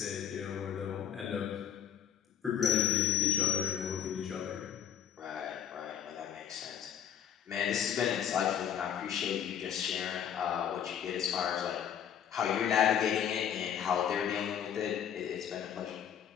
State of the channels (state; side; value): quieter; right; 9.2 dB